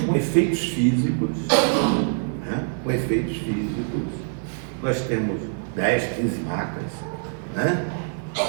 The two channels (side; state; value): left; silent; 62 dB below the other